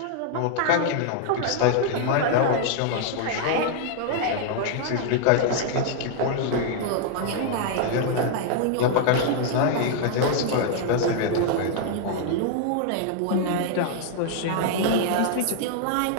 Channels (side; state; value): both; different; correlation 0.00